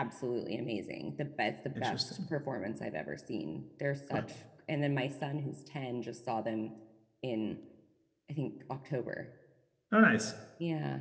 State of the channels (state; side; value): identical; both; correlation 1.00